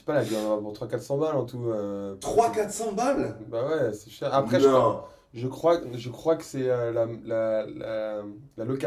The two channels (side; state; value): both; identical; correlation 1.00